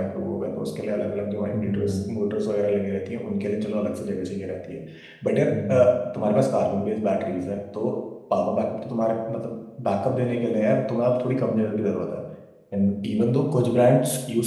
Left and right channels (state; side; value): identical; both; correlation 1.00